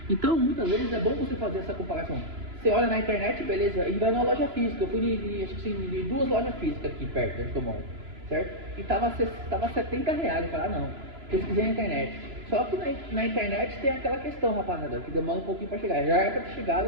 Então muitas vezes é bom você fazer essa comparação. você olha na internet, beleza, e vai numa loja física. Eu fui acho que de 2 lojas físicas aqui perto, onde eu moro, certo? E tava R$70. Eu falei, não, pesquisei na internet. Só que na internet tem aquela questão, rapaziada, que demora um pouquinho pra chegar. Já era pra ter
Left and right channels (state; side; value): late; left; 3.0 ms